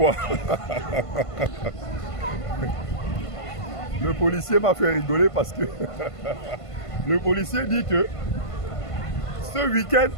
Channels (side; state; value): right; late; 1.5 ms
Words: Le policier m'a fait rigoler parce que le policier dit que ce week-end,